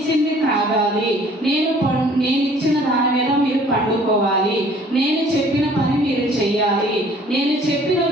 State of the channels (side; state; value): both; normal; correlation 0.55